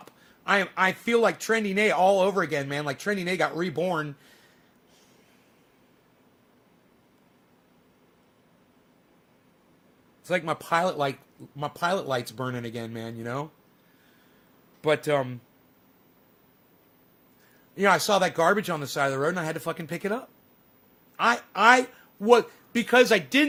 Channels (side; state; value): both; identical; correlation 1.00